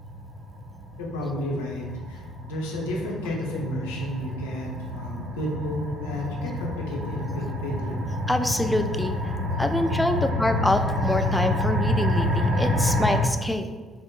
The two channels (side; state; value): both; normal; correlation 0.66